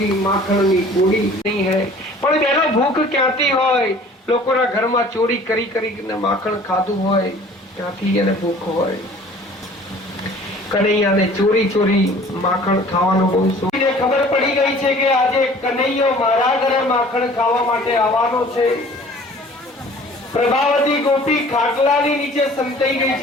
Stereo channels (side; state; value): both; normal; correlation 0.49